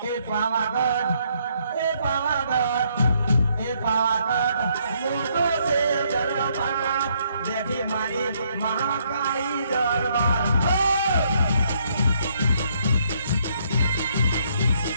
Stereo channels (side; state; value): both; inverted; correlation -0.71